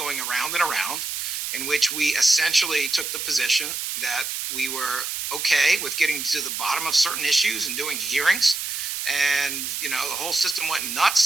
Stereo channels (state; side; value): noise; right; hiss, 4 dB below the sound